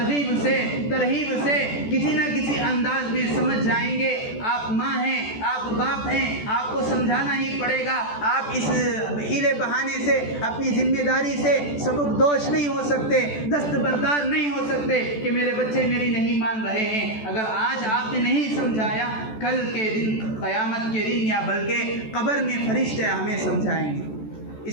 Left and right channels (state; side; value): late; right; 14 ms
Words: سے ترہیب سے کسی نہ کسی انداز میں سمجھ جائیں گے۔ آپ ماں ہیں، آپ باپ ہیں، آپ کو سمجھانا ہی پڑے گا۔ آپ اس ہیلے بہانے سے، اپنی ذمہ داری سے سبک دوش نہیں ہو سکتے، دستبردار نہیں ہو سکتے کہ میرے بچے میری نہیں مان رہے ہیں۔ اگر آج آپ نے نہیں سمجھایا، کل کے دن، قیامت کے دن، یا بلکہ قبر میں فرشتے ہمیں سمجھائیں گے۔